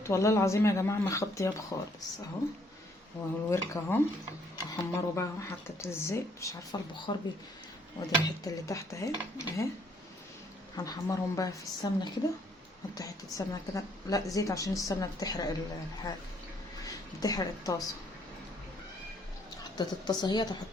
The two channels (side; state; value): both; normal; correlation 0.66